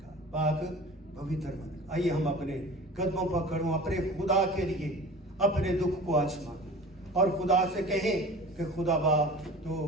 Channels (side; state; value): both; normal; correlation 0.39